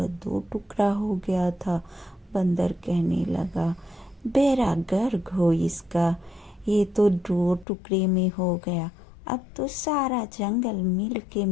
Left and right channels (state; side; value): drops out; right; at 7.7 s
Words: दो टुकड़ा हो गया था। बंदर कहने लगा, बेड़ा गर्क हो इसका, ये तो दो टुकड़े में हो गया। अब तो सारा जंगल मिल के